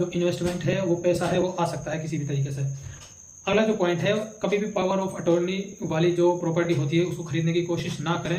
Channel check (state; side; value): identical; both; correlation 1.00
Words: इन्वेस्टमेंट है वो पैसा है वो आ सकता है किसी भी तरीके से। अगला जो पॉइंट है, कभी भी पावर ऑफ अटॉर्नी वाली जो प्रॉपर्टी होती है उसको खरीदने की कोशिश ना